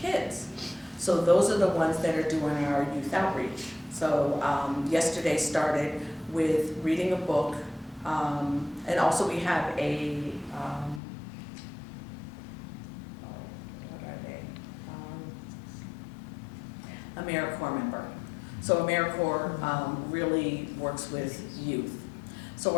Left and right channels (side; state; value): right; drops out; at 11.0 s